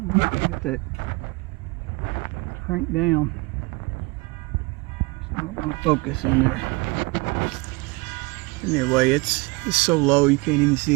Alright, get that cranked down. It's not going to focus in there. Anyway, it's so low you can't even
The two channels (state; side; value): quieter; left; 25.4 dB